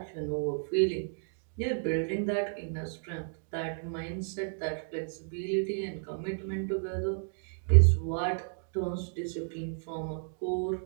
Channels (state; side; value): silent; left; digital silence